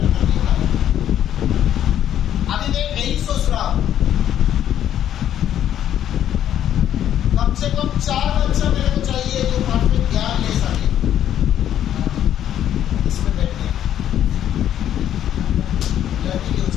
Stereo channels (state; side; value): quieter; right; 10.7 dB